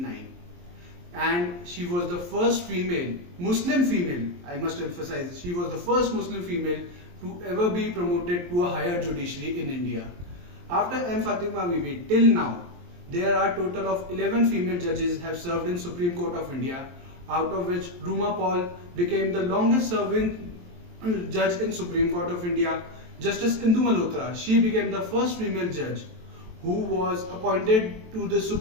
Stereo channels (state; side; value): late; left; 23 ms